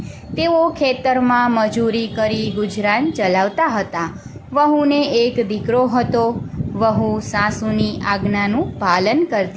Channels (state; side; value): identical; both; correlation 1.00